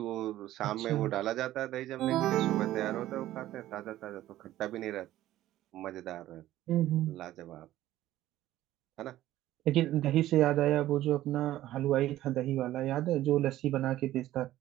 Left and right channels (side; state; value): left; quieter; 14.3 dB